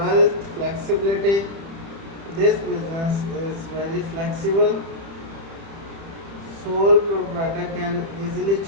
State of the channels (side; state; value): left; late; 30 ms